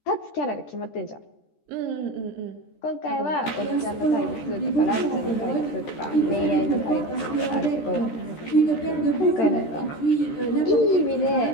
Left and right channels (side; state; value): right; late; 13 ms